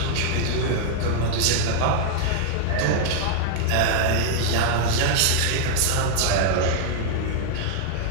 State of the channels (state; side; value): different; both; correlation 0.00